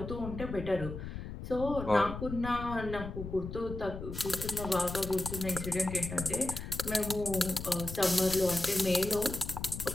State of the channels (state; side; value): noise; left; rumble, 8 dB below the sound